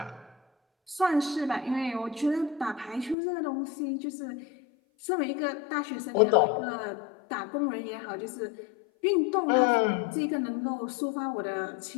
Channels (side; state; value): right; drops out; at 3.2 s